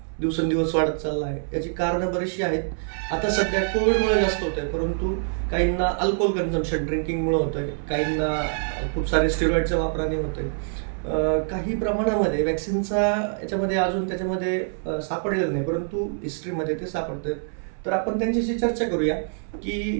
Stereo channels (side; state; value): left; silent; 62 dB below the other